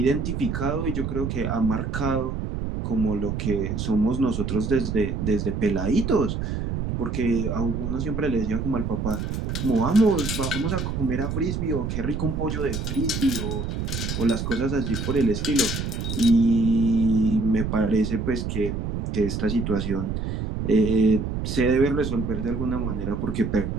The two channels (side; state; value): right; noise; rumble, 3 dB below the sound